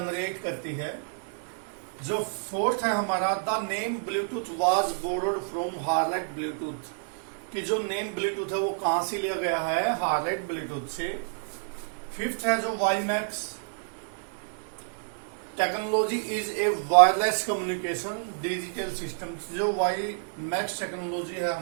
करती है। जो फोर्थ है हमारा, the name Bluetooth was borrowed from harlot Bluetooth, कि जो नेम ब्लूटूथ है वो कहां से लिया गया है, हार्लेट ब्लूटूथ से। फिफ्थ है जो WiMAX technology is a wireless communication digital system, जो वाईमैक्स टेक्नोलॉजी है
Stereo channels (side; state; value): left; silent; digital silence